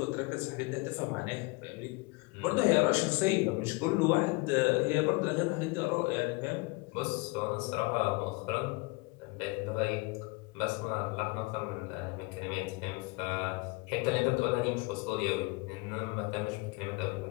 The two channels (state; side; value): quieter; right; 25.9 dB